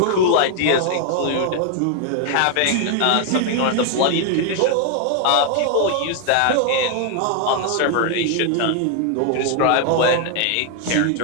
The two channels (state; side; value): different; both; correlation 0.00